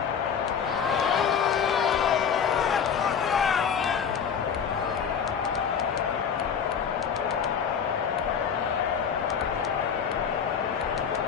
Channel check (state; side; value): quieter; right; 7.2 dB